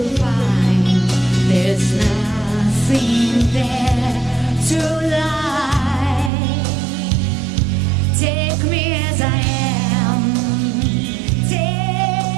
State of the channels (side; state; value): left; drops out; at 6.3 s